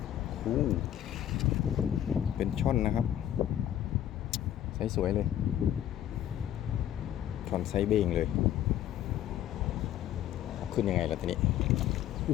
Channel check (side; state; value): right; quieter; 11.4 dB